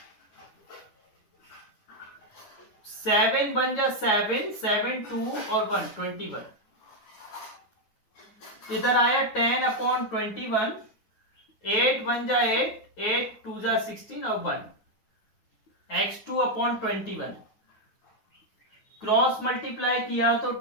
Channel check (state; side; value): late; right; 9.5 ms